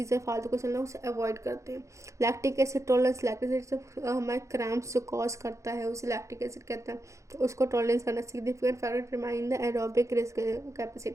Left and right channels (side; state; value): left; late; 0.15 ms